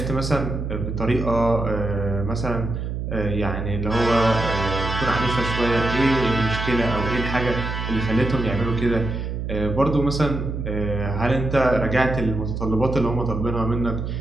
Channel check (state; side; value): noise; right; hum, 4 dB below the sound